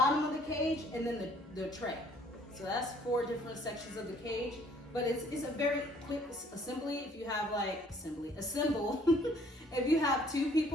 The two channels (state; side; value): normal; both; correlation 0.60